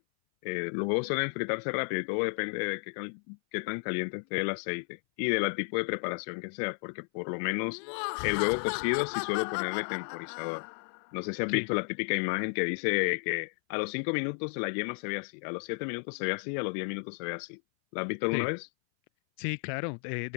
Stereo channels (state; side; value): silent; right; 56 dB below the other